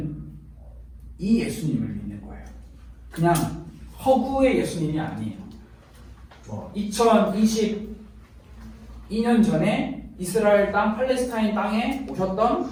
이 예수님을 믿는 거예요. 그냥 허구의 예수님이 아니에요. 2022년 전에 이스라엘 땅, 팔레스타인 땅에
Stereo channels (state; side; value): identical; both; correlation 1.00